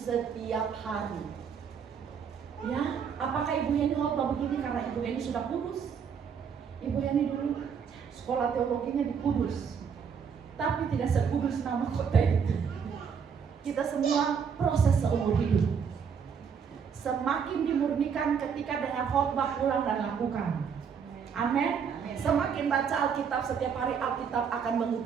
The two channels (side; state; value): left; quieter; 6.8 dB